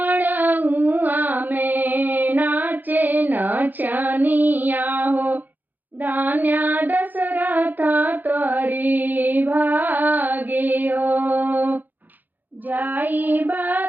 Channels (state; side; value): late; left; 0.086 ms